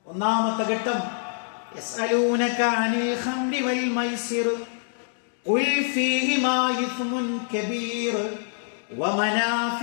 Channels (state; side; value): silent; right; digital silence